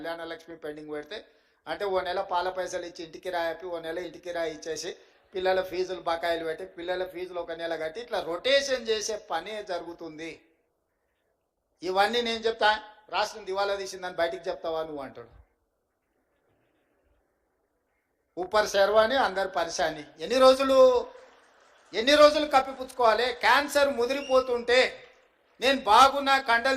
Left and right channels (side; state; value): both; identical; correlation 1.00